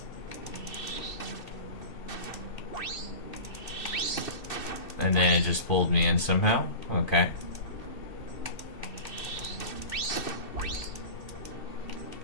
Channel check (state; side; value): late; right; 2.6 ms